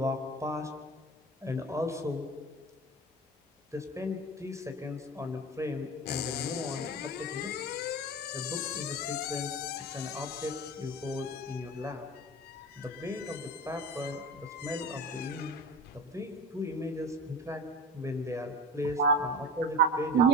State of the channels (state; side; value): normal; both; correlation 0.31